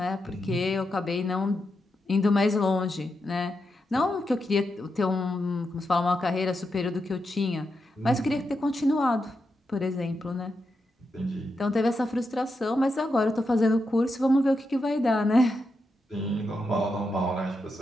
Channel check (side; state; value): both; normal; correlation 0.86